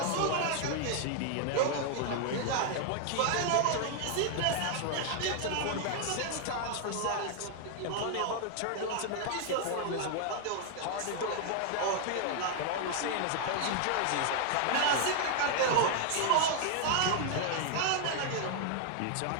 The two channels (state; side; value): different; both; correlation 0.00